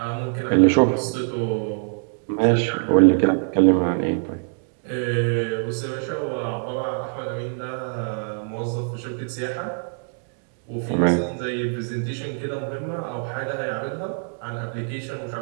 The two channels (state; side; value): silent; left; digital silence